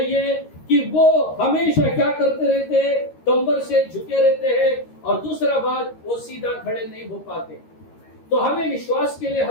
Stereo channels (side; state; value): right; late; 13 ms